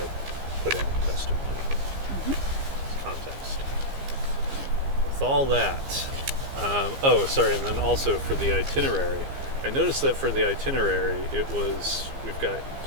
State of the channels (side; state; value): left; late; 15 ms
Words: put in testimony. Context. With all that, and then also for the itinerary, I noticed that for the itinerary we've got